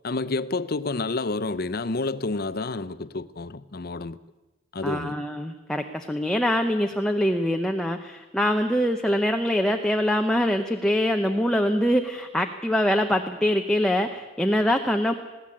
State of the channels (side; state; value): both; normal; correlation 0.78